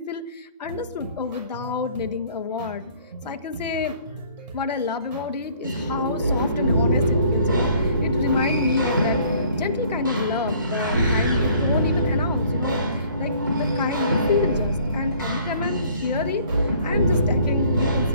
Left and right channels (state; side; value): inverted; both; correlation -0.56